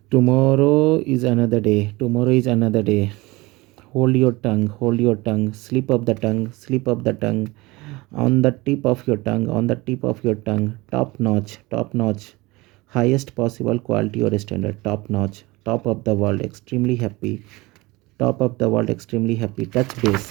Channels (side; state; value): left; quieter; 22.1 dB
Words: Tomorrow is another day, tomorrow is another day. Hold your tongue, hold your tongue. Slip up the tongue, slip up the tongue. On the tip of your tongue, on the tip of your tongue. Top notch, top notch. Highest possible quality or standard. Top notch, top of the world, extremely happy. Top of the world, extremely happy. Touch